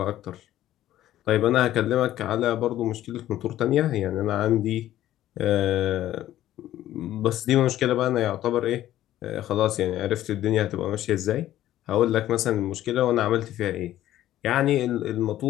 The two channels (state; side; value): quieter; right; 13.3 dB